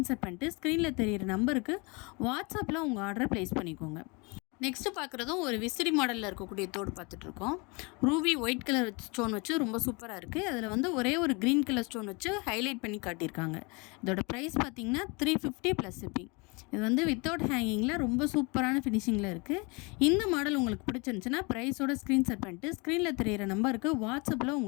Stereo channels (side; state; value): right; quieter; 29.2 dB